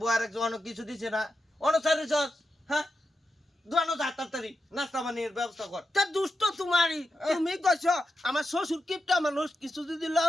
বউ আরেক অনেক কিছু দিছে না অনুসারে চল হ্যাঁ দোয়ানো যা তাড়াতাড়ি নাস্তা বানিয়ে ব্যবস্থা কর তা দুষ্ট তোমারই তুমি কইছো আমার শ্বশুর কিপটা মানুষ কিছু যদি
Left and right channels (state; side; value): normal; both; correlation 0.88